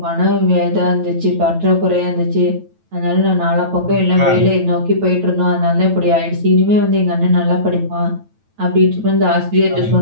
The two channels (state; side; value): late; left; 9.1 ms